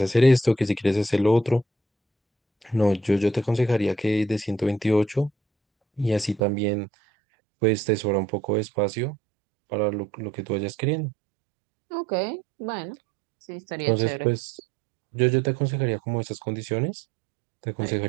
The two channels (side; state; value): left; drops out; at 6.4 s